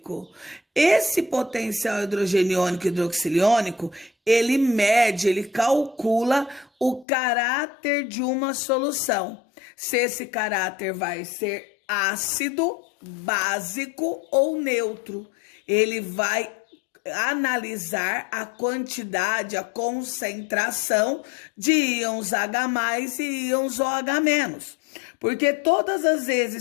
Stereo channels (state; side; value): drops out; right; at 7.1 s